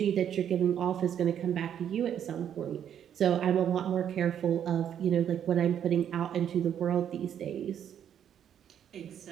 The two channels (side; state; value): left; quieter; 9.3 dB